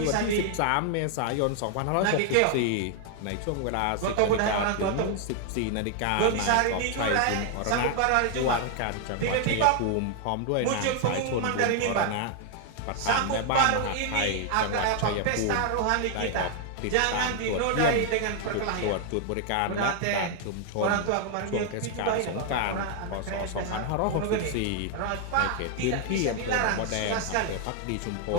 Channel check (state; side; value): different; both; correlation 0.00